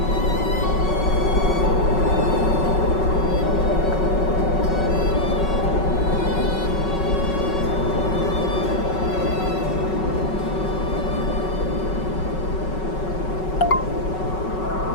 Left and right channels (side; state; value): right; late; 5.4 ms